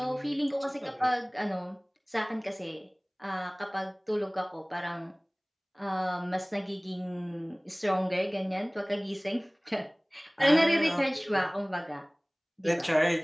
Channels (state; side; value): identical; both; correlation 1.00